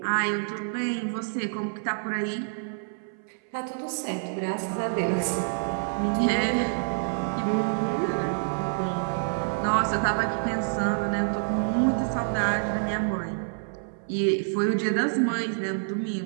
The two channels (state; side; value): silent; left; 57 dB below the other